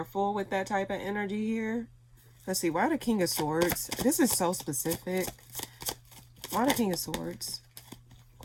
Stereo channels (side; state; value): both; identical; correlation 1.00